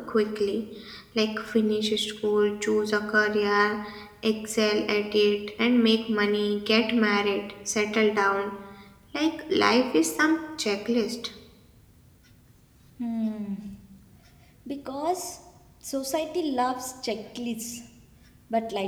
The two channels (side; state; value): both; identical; correlation 1.00